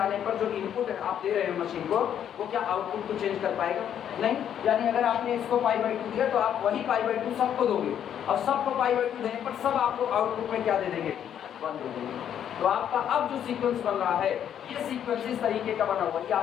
पर जो इनपुट है आप दे रहे हो मशीन को, वो क्या आउटपुट को चेंज कर पाएगा? नहीं। यानी अगर आपने इसको पाई बाई 2 दिया तो आप वही पाई बाई 2 सबको दोगे, और सबको पाई बाई 2 देने पर सब आपको आउटपुट में क्या दे देंगे? 1 दे देंगे। तो आपका अब जो सीक्वेंस बन रहा है, ये सीक्वेंस इस तरीके का बना हुआ, ये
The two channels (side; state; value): right; quieter; 9.5 dB